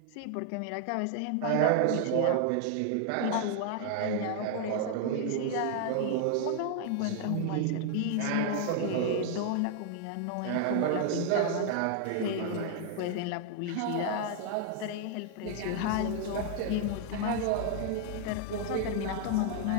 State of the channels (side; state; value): both; different; correlation 0.00